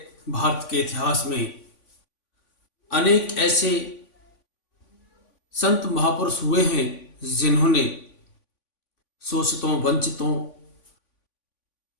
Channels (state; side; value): late; right; 3.5 ms